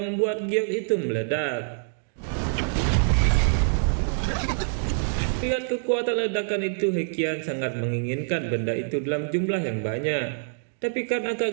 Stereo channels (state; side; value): silent; left; digital silence